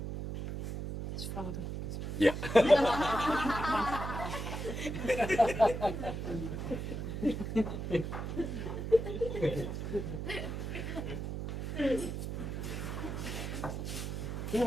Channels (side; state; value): right; noise; hum, 4 dB below the sound